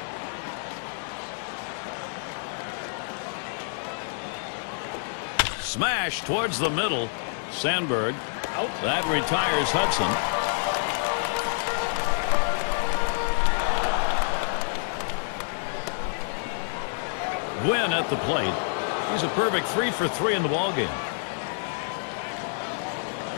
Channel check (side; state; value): right; silent; 59 dB below the other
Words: Smash towards the middle. Sandberg. Out. That retires Hudson. Win at the plate. He's a perfect 3 for 3 in the ballgame.